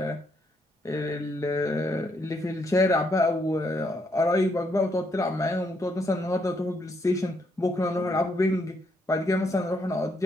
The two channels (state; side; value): normal; both; correlation 0.75